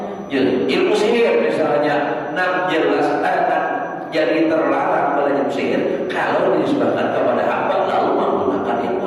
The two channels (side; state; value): both; identical; correlation 1.00